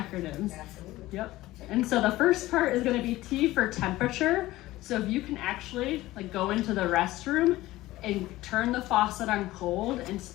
Absolutely. Yep. And so the first part is going to be T for temperature. So if you can actually like go into the restroom and turn the faucet on cold and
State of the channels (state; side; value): quieter; right; 17.2 dB